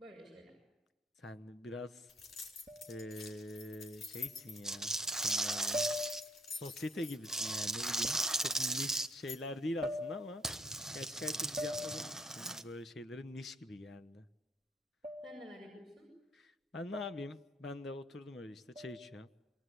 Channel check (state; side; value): normal; both; correlation 0.60